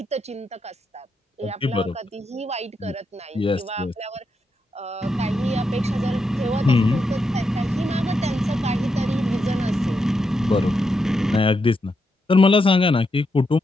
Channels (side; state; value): both; normal; correlation 0.83